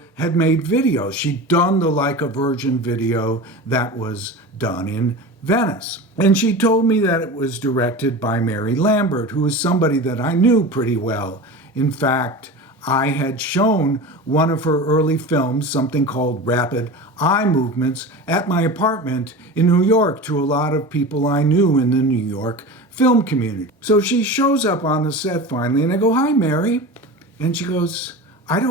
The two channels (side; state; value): both; normal; correlation 0.30